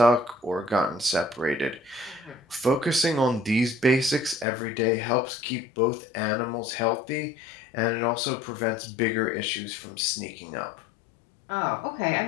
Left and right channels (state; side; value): drops out; right; at 4.5 s